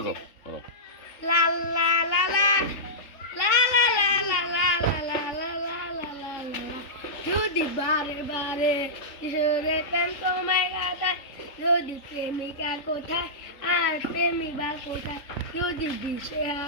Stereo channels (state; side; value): late; right; 3.6 ms